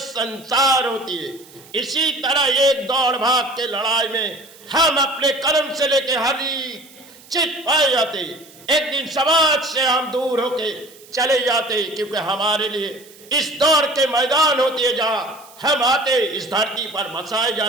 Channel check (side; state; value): right; noise; hiss, 23 dB below the sound